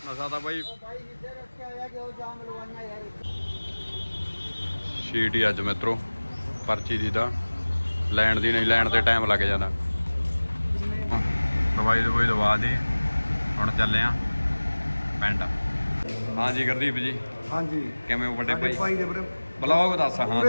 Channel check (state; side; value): inverted; both; correlation -1.00